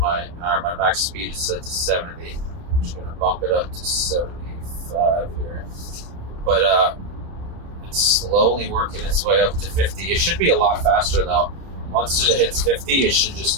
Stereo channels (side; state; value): left; late; 29 ms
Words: max speed is set to 70. I'm just gonna bump it up to 75 here. But it's slowly working its way up to 50. It should be a lot faster though. Once it hits 50, it should just